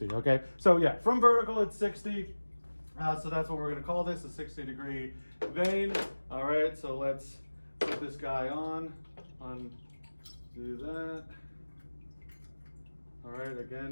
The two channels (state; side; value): inverted; both; correlation -1.00